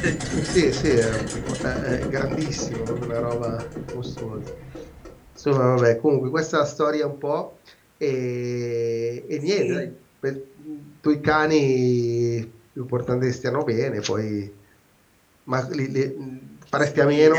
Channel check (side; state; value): both; identical; correlation 1.00